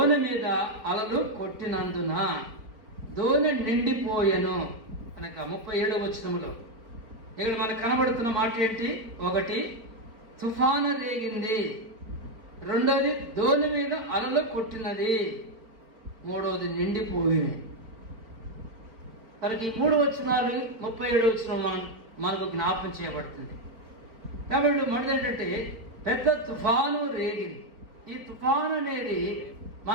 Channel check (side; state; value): left; late; 4.6 ms